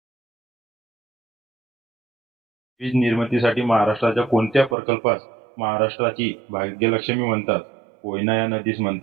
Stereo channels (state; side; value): drops out; left; at 4.8 s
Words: वीज निर्मितीसाठी महाराष्ट्राच्या कोणत्या प्रकल्पास महाराष्ट्राची भाग्यलक्ष्मी म्हणतात? कोयना या नदीस